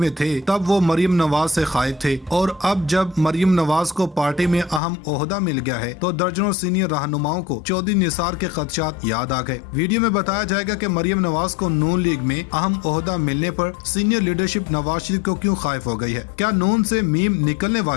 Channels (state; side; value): drops out; right; at 4.8 s